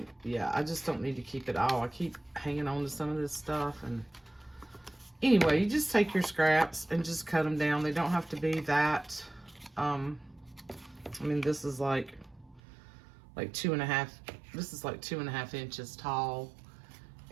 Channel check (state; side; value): drops out; left; at 12.6 s